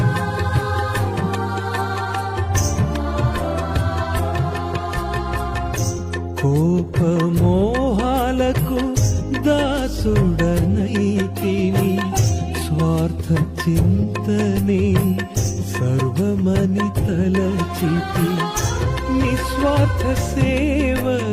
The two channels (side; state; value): both; identical; correlation 1.00